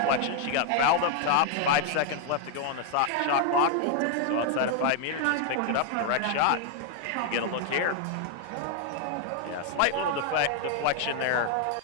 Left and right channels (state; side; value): different; both; correlation 0.00